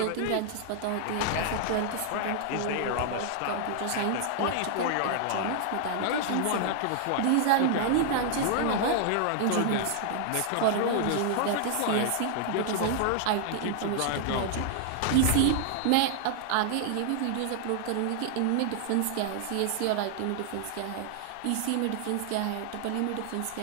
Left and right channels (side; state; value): both; different; correlation -0.01